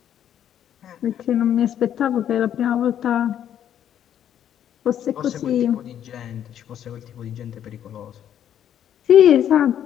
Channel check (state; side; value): quieter; right; 10.0 dB